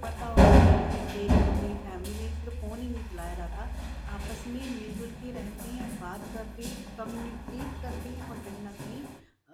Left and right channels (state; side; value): identical; both; correlation 1.00